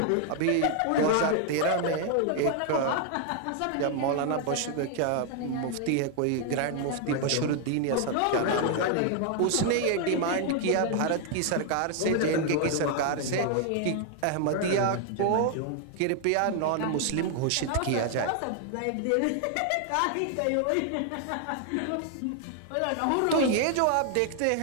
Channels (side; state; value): both; different; correlation 0.00